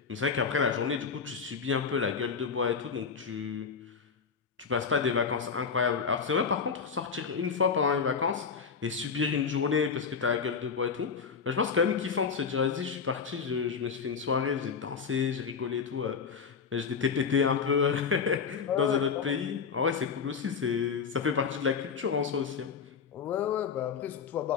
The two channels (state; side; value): quieter; right; 5.9 dB